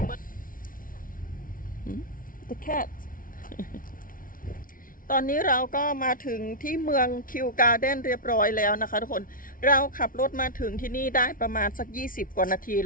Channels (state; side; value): late; right; 0.40 ms